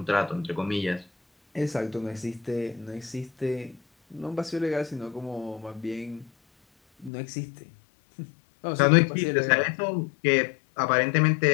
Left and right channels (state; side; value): drops out; right; at 7.1 s